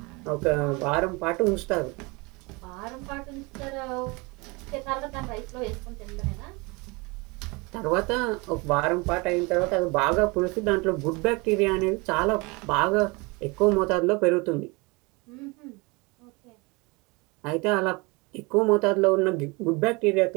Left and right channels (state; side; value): quieter; left; 26.7 dB